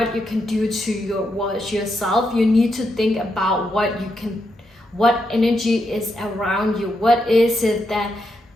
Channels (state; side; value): normal; both; correlation 0.82